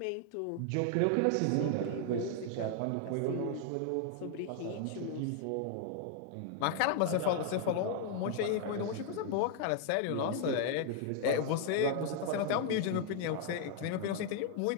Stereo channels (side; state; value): both; different; correlation 0.00